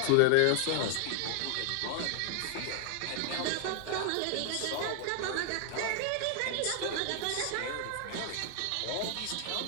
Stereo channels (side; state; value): both; different; correlation 0.00